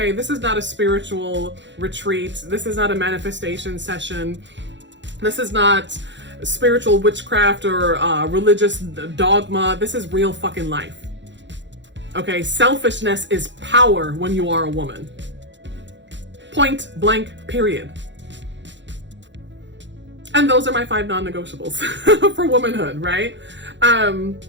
This is not a spiritual retreat. This is not a manifestation session. This is not spiritual witchcraft or religious dogma. This is real fucking life. Okay, selfishness is power when you are a woman. Point blank, period. And those are my 5 non-negotiables for womanhood, right?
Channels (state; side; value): late; left; 0.53 ms